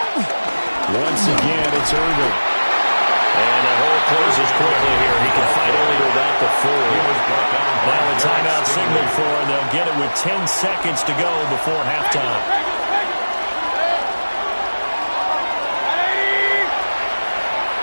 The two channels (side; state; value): both; inverted; correlation -1.00